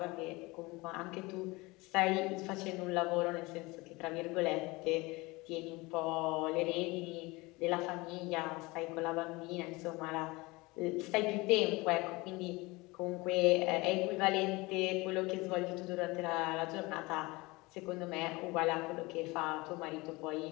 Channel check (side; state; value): right; quieter; 23.3 dB